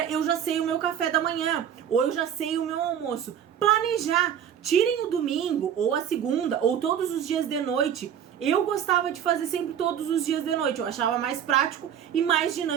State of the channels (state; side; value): quieter; left; 9.1 dB